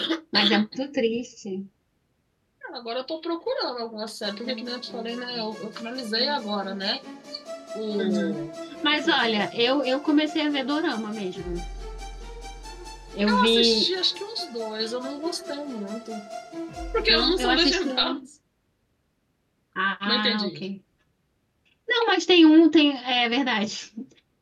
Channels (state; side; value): identical; both; correlation 1.00